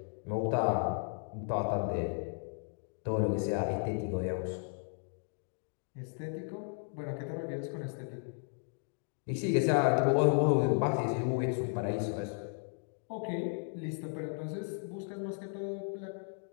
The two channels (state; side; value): silent; right; 55 dB below the other